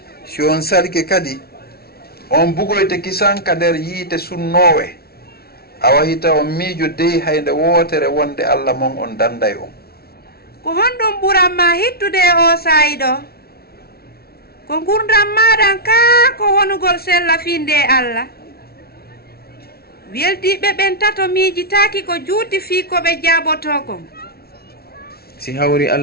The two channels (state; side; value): late; right; 0.45 ms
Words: si on salke kadi on bugoyte kisan ka nder yiite sunnowe a wahita on miijo dey haynde wootere wonde Allah mon on danday on. Ko honɗum ɓuranma hittude e o saayi ɗo ko gurdam maɗan kaa ko wonugol sella finde e Allah weldiɓe ɓen tato miijitaaki ko juuti fii ko ɓe jaaboto kon. Si hawri